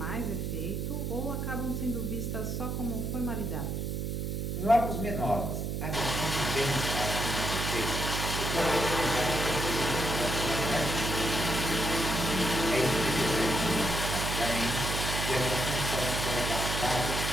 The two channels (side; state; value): right; noise; hum, 2 dB below the sound